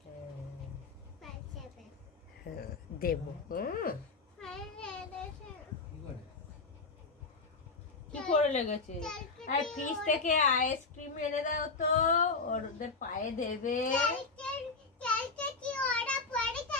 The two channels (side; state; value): right; quieter; 4.1 dB